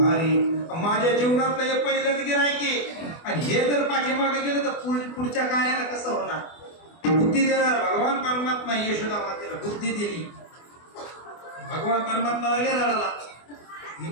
माझ्या जीवनातलं हे पहिलंच गिरायके आणि हे जर पाठीमागे गेलं तर पुढच्या कार्याला कसं होणार. बुद्धी देणार भगवान परमात्मा. यशोदा मातेला बुद्धी दिली. भगवान परमात्मा लागले रडायला.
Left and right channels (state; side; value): late; right; 24 ms